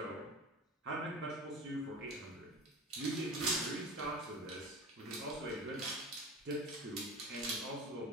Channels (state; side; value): normal; both; correlation 0.33